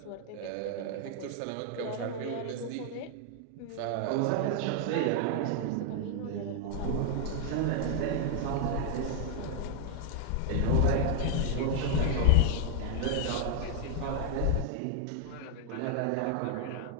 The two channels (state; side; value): different; both; correlation 0.00